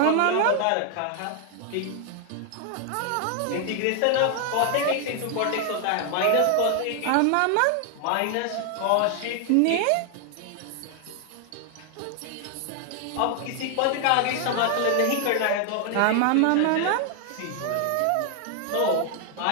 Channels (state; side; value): different; both; correlation 0.00